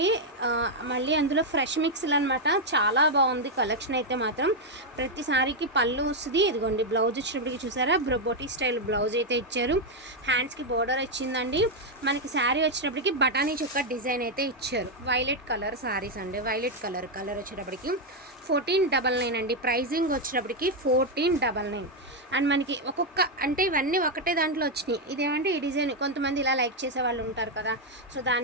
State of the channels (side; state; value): both; normal; correlation 0.02